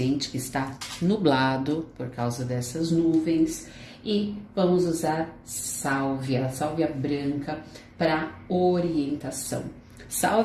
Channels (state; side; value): identical; both; correlation 1.00